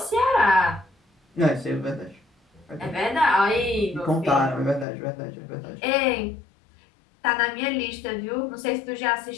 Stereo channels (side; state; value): right; drops out; at 4.9 s